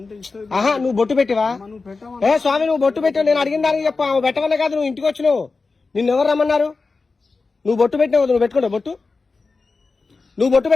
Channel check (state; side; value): quieter; right; 4.1 dB